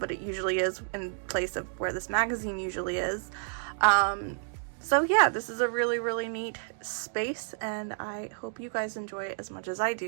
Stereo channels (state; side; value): silent; left; digital silence